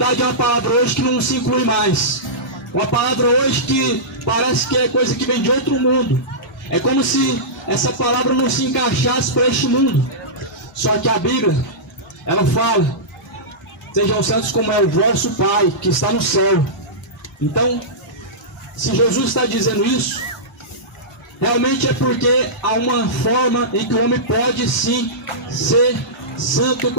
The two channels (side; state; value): both; normal; correlation -0.16